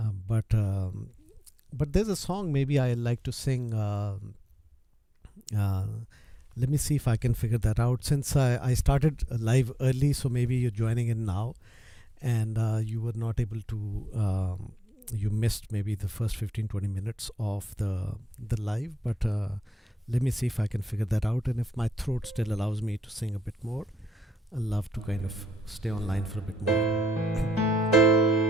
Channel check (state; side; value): normal; both; correlation 0.84